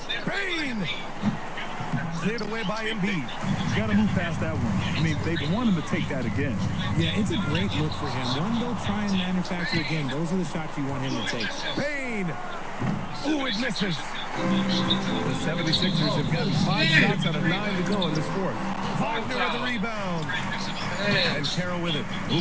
Bain! Cleared away by Embiid. Got to move past that one. I mean, they want him to take that again. Yeah, it's a great look for him. One, they'll try and manufacture again. Those are the shots you want him to take. Bain! Ooh, it misses. The 76ers have gotten 5 shots out of 9 to go in this fourth. Wagner with the rebound. And Carroll with it.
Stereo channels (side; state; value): both; identical; correlation 1.00